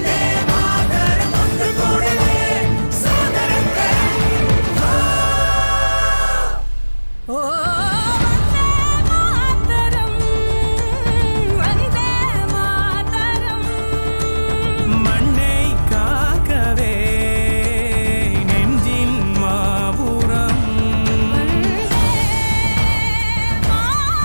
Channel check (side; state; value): both; inverted; correlation -1.00